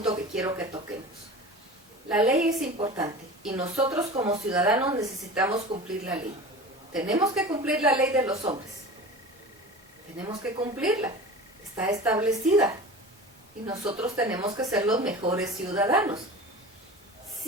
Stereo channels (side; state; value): both; normal; correlation 0.35